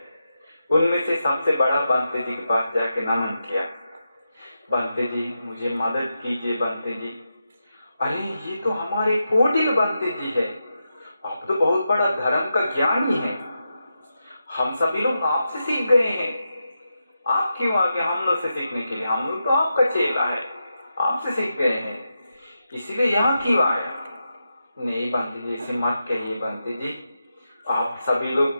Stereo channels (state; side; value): inverted; both; correlation -0.88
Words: उनमें से सबसे बड़ा बंते जी के पास जाके नमन किया, बंते जी मुझे मदद कीजिए बंते जी। अरे ये तो हमारे पोटिल बंते जी है, आप तो बहुत बड़ा धर्म का ज्ञानी है, हम सभी लोग आपसे सीख गए हैं, आप क्यों आगे हम लोग से सीखने के लिए? हम लोग तो आपका चेला है, आपसे सीख गए हैं, इसीलिए यहाँ क्यों आया? नहीं बंते जी ऐसे मत कहिए बंते जी, आप सभी लोग